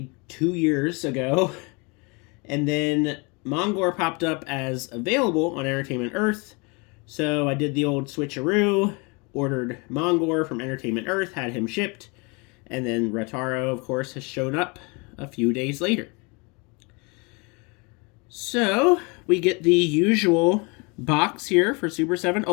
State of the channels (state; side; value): quieter; right; 29.9 dB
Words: 2 years ago. And then Mongor popped up as available on Entertainment Earth. So I did the old switcheroo, ordered Mongor from Entertainment Earth, had him shipped, and then Ratar-O, of course, has shown up a few days later. So we get the usual box here for Super7